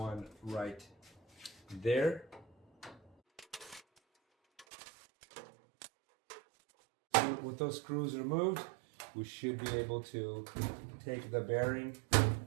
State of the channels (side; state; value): left; drops out; at 4.7 s